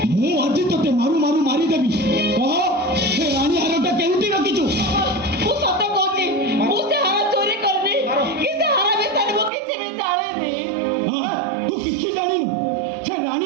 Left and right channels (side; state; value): left; drops out; at 9.5 s